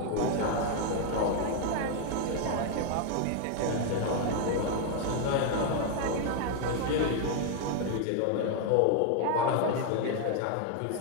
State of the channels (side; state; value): both; different; correlation 0.00